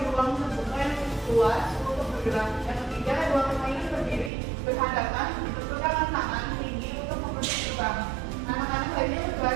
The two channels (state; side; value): drops out; left; at 4.3 s